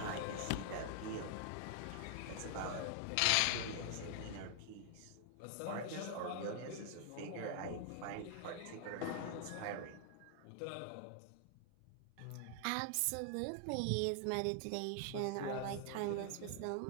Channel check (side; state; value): both; different; correlation 0.00